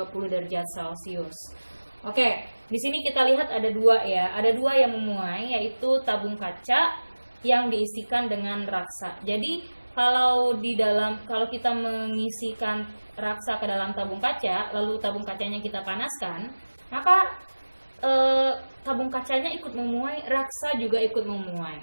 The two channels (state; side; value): inverted; both; correlation -1.00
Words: derajat Celcius? Oke, di sini kita lihat ada dua ya, ada dua yang memuai, yaitu tabung kaca yang diisikan dengan raksa. Jadi kalau kita mengisikan raksa ke dalam tabung kaca, lalu tabung kacanya kita panaskan, maka tabung kacanya ikut memuai, raksa juga ikut memuai,